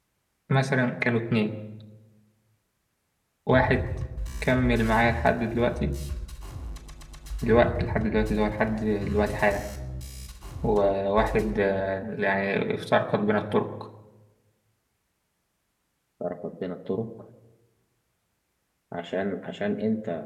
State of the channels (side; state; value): both; identical; correlation 1.00